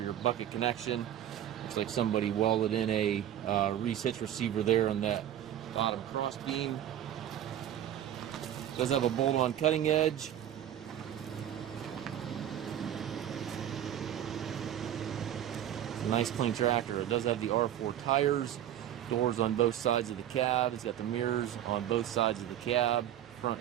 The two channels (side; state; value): left; quieter; 11.2 dB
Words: your bucket connection. Looks like somebody welded in a Reese hitch receiver there on that bottom cross beam. Does have a bolt-on cutting edge. It's a nice clean tractor. It does have the R4 tires, doors on both sides of the cab. It's got the mirrors on both sides of the cab,